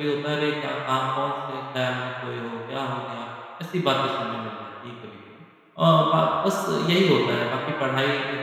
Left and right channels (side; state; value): both; identical; correlation 1.00